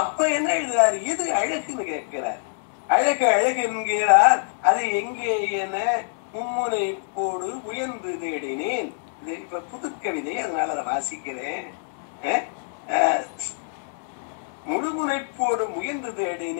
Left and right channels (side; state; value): right; silent; digital silence